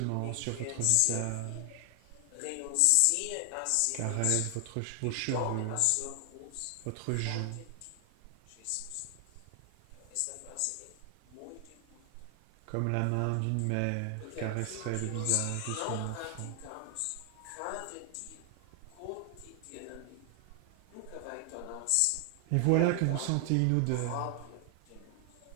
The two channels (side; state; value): both; different; correlation 0.00